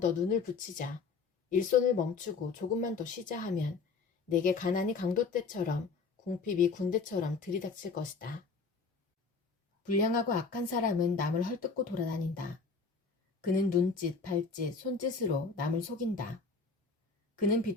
눈을 붙이자, 일손을 멈추고 조금만 더 쉬자 하면 내게 가난이 강도 때처럼 궁핍이 군대처럼 들이닥칠 것이다. 불량하고 악한 사람은 남을 헐뜯고 돌아다닌다. 그는 눈짓, 발짓, 손짓으로 남을 속인다. 그는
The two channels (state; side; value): quieter; right; 4.6 dB